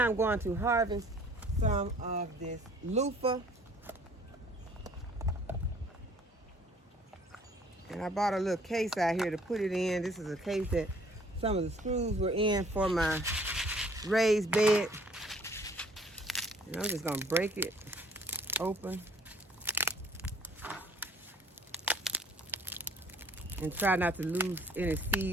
I'm going to harvest some of this loofah. And I bought a little case out here to put it in. This is a case that some of the screws were in for my raised bed. And I'm just going to break it open and try not to lose any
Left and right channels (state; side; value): normal; both; correlation 0.56